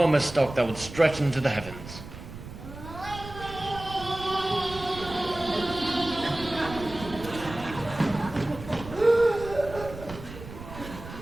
stalk that would stretch into the heavens.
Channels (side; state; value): right; noise; rumble, 13 dB below the sound